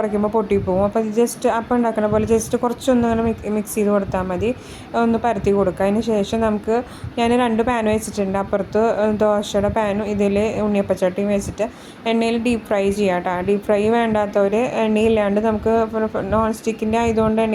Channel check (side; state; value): both; identical; correlation 1.00